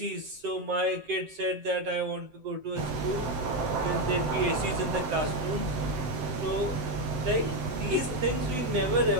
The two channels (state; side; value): late; left; 7.8 ms